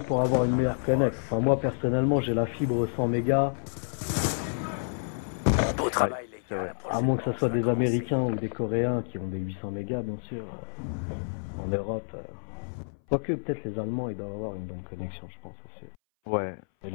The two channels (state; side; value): silent; right; 58 dB below the other